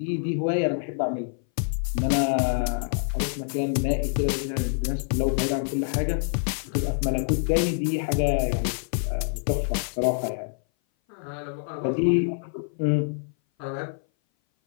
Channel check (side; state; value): right; silent; 58 dB below the other